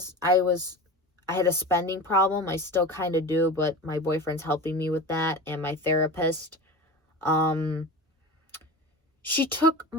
I had a spending problem. I still kind of do, but my boyfriend's helping me with that and my therapist. She took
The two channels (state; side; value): normal; both; correlation 0.31